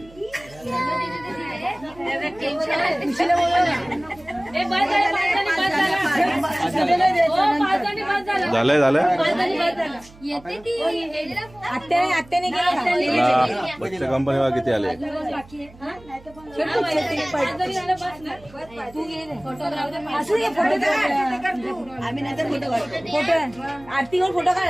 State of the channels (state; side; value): noise; right; hum, 23 dB below the sound